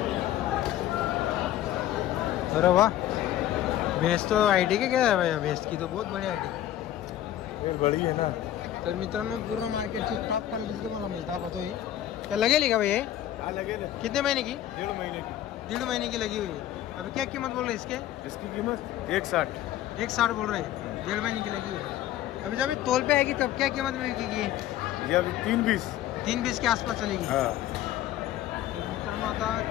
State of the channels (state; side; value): quieter; right; 12.6 dB